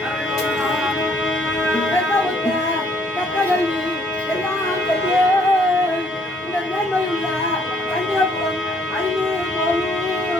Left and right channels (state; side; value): normal; both; correlation 0.65